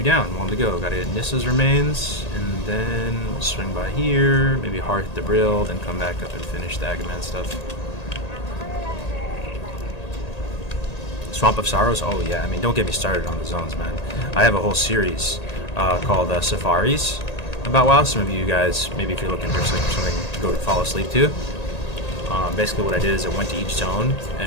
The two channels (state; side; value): late; right; 1.8 ms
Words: down, 1 to go. Gotta get Nissa's remains, and then we'll swing by here, maybe Hearth the Brill, then come back up and finish the Agaman stuff. Swamp of Sorrows? Oh yeah, I mean, don't get me started on the zones, man. I have a whole series called Safaris about WoW. Some of you guys, maybe if you're looking for something to go to fall asleep to. Basically what I did is I went to each zone